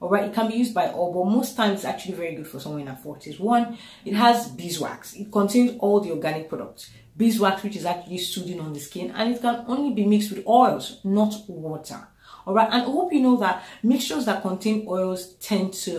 All right, it can be used by all, but most times it's actually very good for someone in her 40s. One, it has beeswax. It contains all the organic products. Beeswax, which is actually soothing on the skin, and it can only be mixed with oils, not water. All right, and I hope you know that mixtures that contain oils tend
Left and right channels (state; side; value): identical; both; correlation 1.00